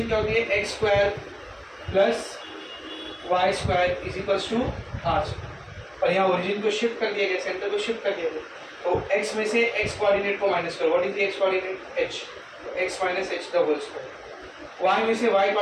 क्या होती है, x square plus y square is equals to r, और यहाँ ओरिजिन को शिफ्ट कर दिया गया, सेंटर को शिफ्ट कर दिया गया, तो x में से x कोऑर्डिनेट को माइनस करो, what is the x coordinate h, तो x minus h the whole square. y में से y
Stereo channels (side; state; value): both; identical; correlation 1.00